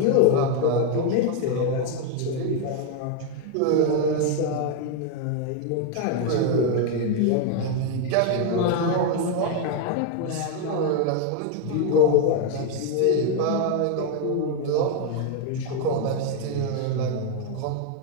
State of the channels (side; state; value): both; different; correlation 0.01